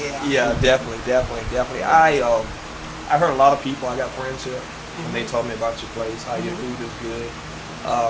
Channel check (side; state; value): both; identical; correlation 1.00